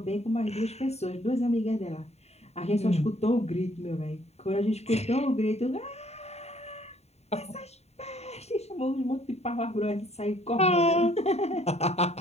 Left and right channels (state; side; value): late; right; 0.31 ms